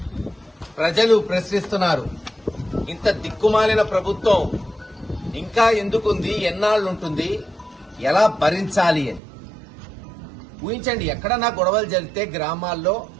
ప్రజలు ప్రశ్నిస్తున్నారు. ఇంత దిక్కుమాలిన ప్రభుత్వం ఇంకా ఎందుకుంది, ఎన్నాళ్ళుంటుంది, ఎలా భరించాలి అని ఊహించండి. ఎక్కడన్నా గొడవలు జరిగితే గ్రామాల్లో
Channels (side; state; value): left; drops out; at 9.2 s